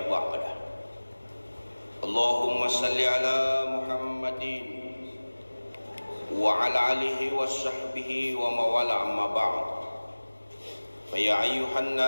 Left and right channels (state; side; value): inverted; both; correlation -1.00